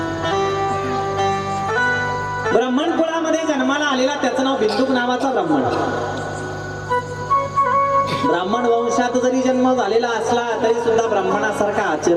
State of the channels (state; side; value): identical; both; correlation 1.00